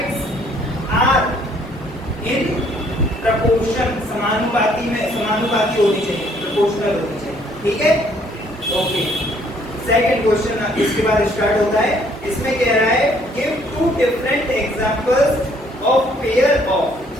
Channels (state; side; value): normal; both; correlation 0.63